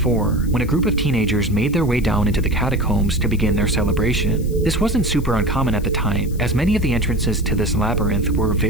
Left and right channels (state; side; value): noise; left; hiss, 21 dB below the sound